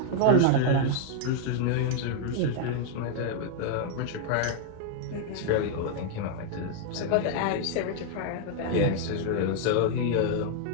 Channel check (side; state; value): both; different; correlation 0.00